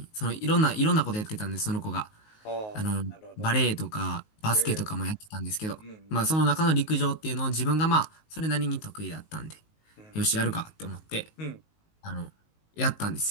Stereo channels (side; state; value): right; late; 19 ms